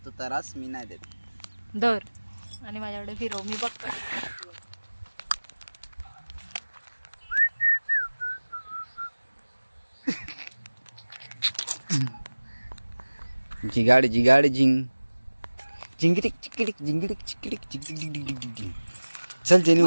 त्रास मी नाही देत. दर आणि माझ्याकडे फिरव, मी बघतो. जिगाड जिंग जिंगिटिक चिकिटिक जिंगिटिक चिकिटिक जिंगिटिक. चल जेनी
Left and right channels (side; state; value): both; inverted; correlation -1.00